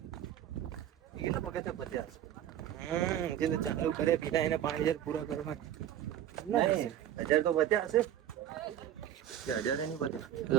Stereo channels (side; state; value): left; quieter; 11.0 dB